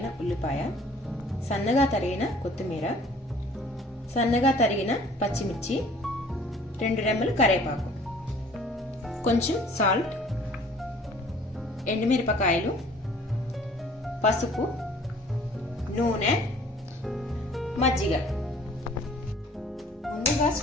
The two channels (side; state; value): both; normal; correlation 0.53